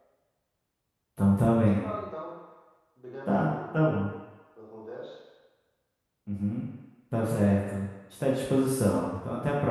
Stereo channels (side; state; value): both; identical; correlation 1.00